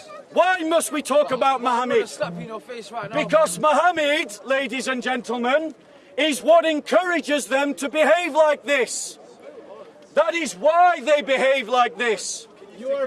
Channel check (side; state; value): both; identical; correlation 1.00